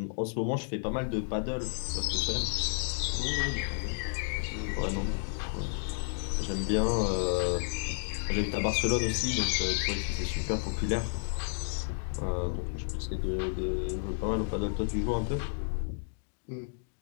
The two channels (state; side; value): silent; right; digital silence